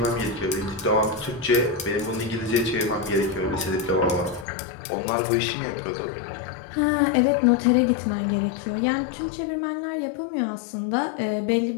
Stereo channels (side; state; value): right; drops out; at 4.5 s